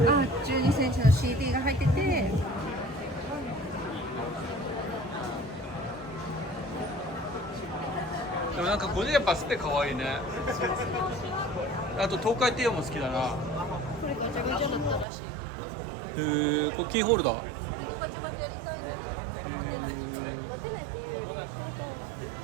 12センチの CD が入ってて、でもなんかこれやっぱスペ可愛いね。あと東海帝王も好きだな。これガチャガチャだったらしい。これキーホルダー。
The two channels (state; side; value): drops out; left; at 15.1 s